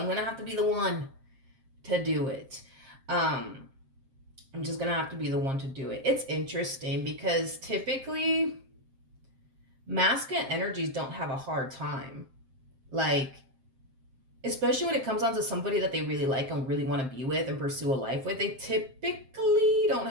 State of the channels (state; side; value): late; left; 7.6 ms